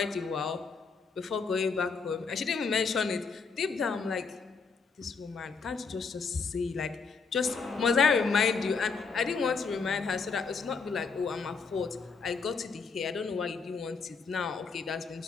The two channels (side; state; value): right; quieter; 5.0 dB